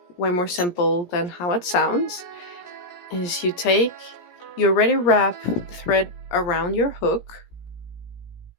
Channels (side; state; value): right; late; 17 ms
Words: way more simple than how it sounds, is you already wrap the thread around your hook,